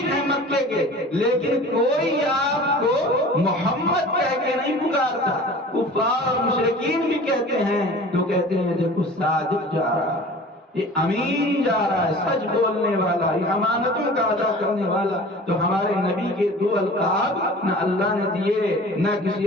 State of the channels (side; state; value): both; normal; correlation 0.42